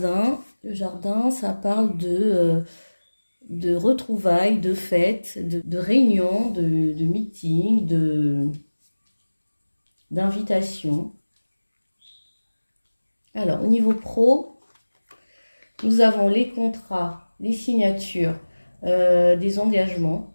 Le jardin, ça parle de retrouvailles, de fêtes, de réunions, de meetings, d'invitations. Alors, au niveau pro, nous avons les contrats, les signatures, des engagements.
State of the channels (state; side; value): inverted; both; correlation -1.00